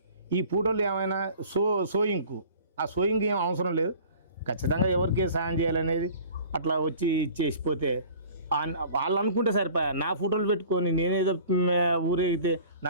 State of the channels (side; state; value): both; inverted; correlation -0.46